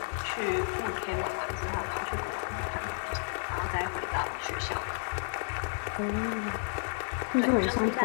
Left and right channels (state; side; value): silent; right; digital silence